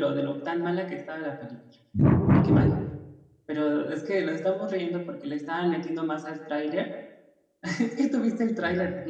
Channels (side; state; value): both; identical; correlation 1.00